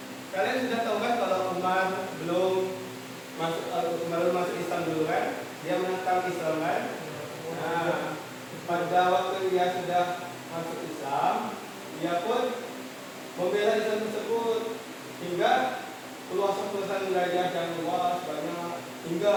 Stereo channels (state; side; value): identical; both; correlation 1.00